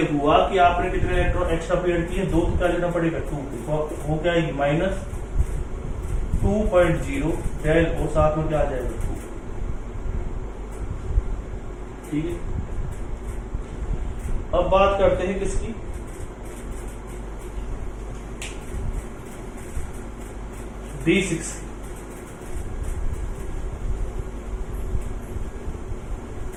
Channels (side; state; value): both; identical; correlation 1.00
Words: हुआ कि आपने कितने इलेक्ट्रॉन एक्स्ट्रा पेयर किए 2, तो क्या लेना पड़ेगा 2, वो क्या आएगी -2.0 डेल और साथ में क्या आ जाएगा 2। ठीक है, अब बात करते हैं किसकी, D6।